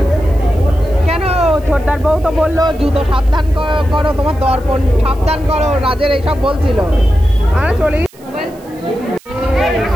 কেন ছোটদার বউ তো বললো জুতো সাবধান করো তোমার দর্পণ সাবধান করো রাজের এইসব বলছিল আর চলি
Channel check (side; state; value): right; noise; hiss, 27 dB below the sound